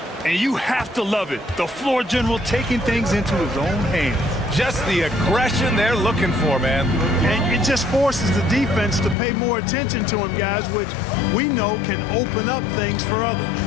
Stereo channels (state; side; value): drops out; right; at 9.2 s